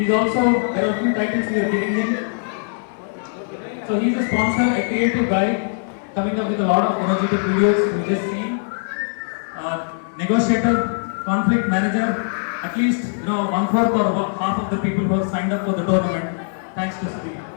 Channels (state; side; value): silent; right; 65 dB below the other